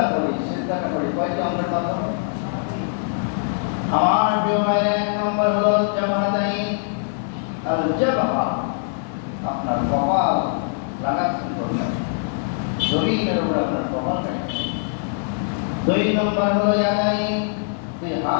করি, সিজদাটা করি কয়টি অঙ্গের মাধ্যমে? আমার প্রিয় ভাইরা, এক নম্বর হলো জাবহাতাইন। আল জাবহা, আপনার কপাল লাগাচ্ছেন বললেন, জমিনের উপরে আপনার কপাল রাখছেন। দুই নম্বর হলো ইয়াদাইন, দুই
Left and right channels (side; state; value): right; silent; digital silence